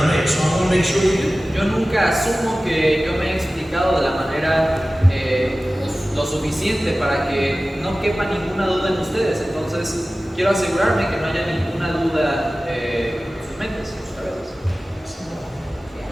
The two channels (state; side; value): normal; both; correlation 0.96